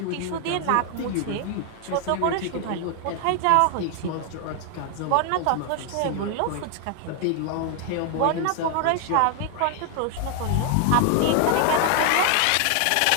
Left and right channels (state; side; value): different; both; correlation 0.00